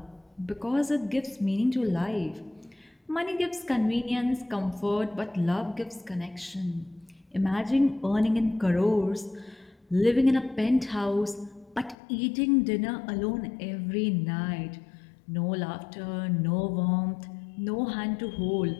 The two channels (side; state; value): right; drops out; at 12.0 s